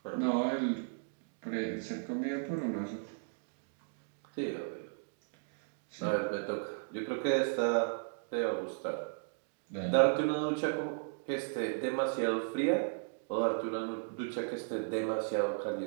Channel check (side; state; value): left; silent; digital silence